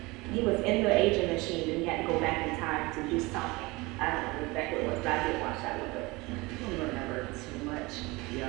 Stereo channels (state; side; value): quieter; left; 23.2 dB